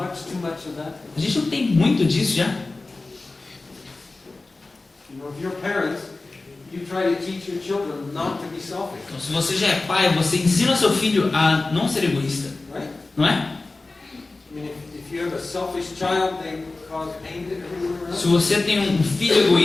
much of that? A gente não tem muito disso já. If you're parents, you try to teach your children not to be selfish, Então, se você já é pai, você ensina seu filho a não ser egoísta, right? não é? If you have a selfish child, they cause pain to everyone around. Se você tem um filho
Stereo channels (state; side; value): quieter; right; 3.4 dB